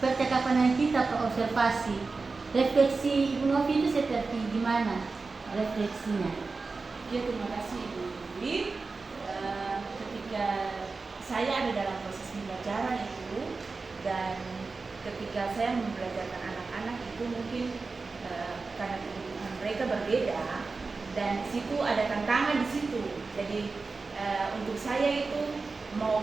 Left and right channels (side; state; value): left; quieter; 4.1 dB